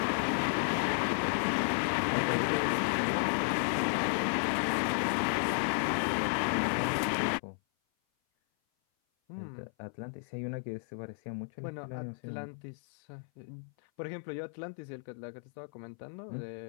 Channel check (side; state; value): right; silent; 56 dB below the other